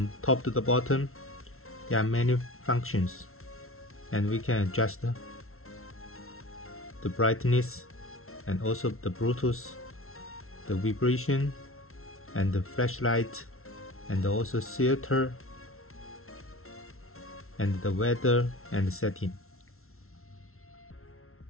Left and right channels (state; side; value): late; right; 0.62 ms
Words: top to the bottom. There are many functions, and we can adjust the brightness and also the Bluetooth, the vibration, and the flashlight, and also filter, and the weather and the setting.